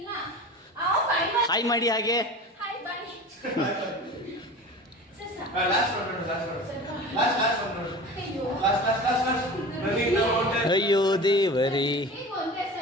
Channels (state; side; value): normal; both; correlation 0.36